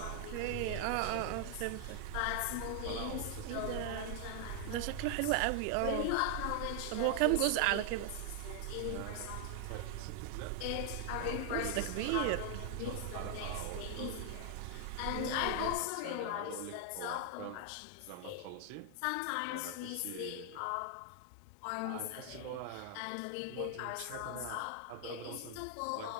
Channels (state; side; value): different; both; correlation 0.00